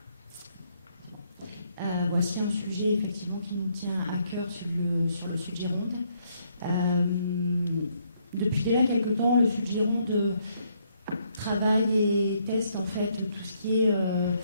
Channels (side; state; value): both; inverted; correlation -0.71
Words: Voici un sujet effectivement qui nous tient à cœur sur le Sud Gironde. Depuis déjà quelques temps, le Sud Gironde travaille et teste en fait tout ce qui est